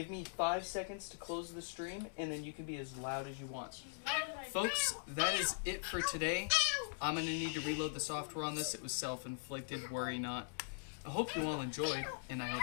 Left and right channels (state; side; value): silent; right; digital silence